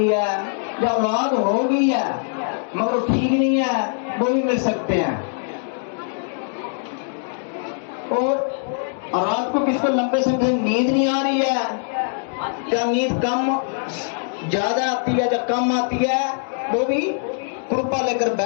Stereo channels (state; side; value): silent; right; 64 dB below the other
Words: है, या औलाद हो गई है मगर ठीक नहीं है, वो भी मिल सकते हैं। और रात को किसको लंबे समय से नींद नहीं आ रही है, या नींद कम ज्यादा आती है या कम आती है, वो भी कृपा लेकर